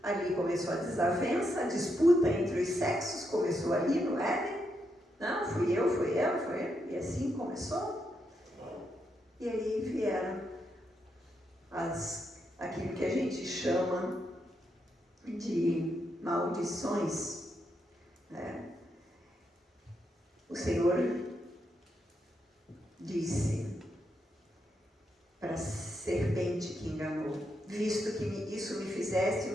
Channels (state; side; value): normal; both; correlation 0.81